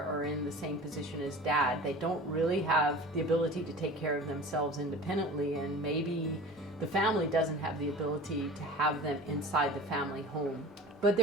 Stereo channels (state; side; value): normal; both; correlation 0.39